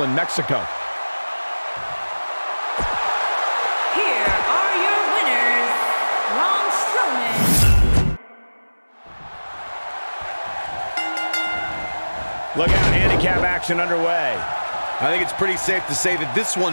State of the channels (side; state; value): both; inverted; correlation -1.00